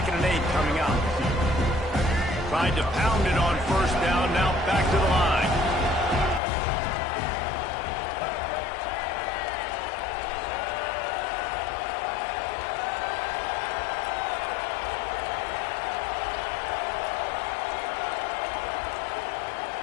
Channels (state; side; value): drops out; right; at 6.4 s